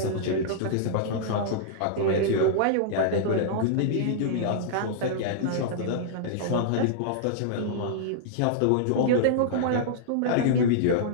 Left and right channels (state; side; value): different; both; correlation -0.02